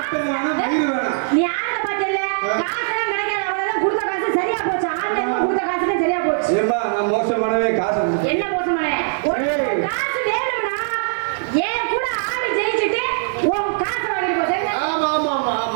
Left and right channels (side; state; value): left; silent; digital silence